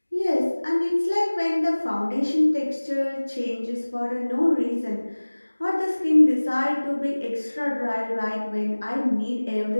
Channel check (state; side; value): inverted; both; correlation -1.00